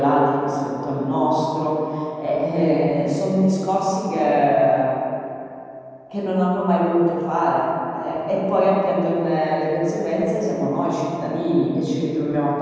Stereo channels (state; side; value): identical; both; correlation 1.00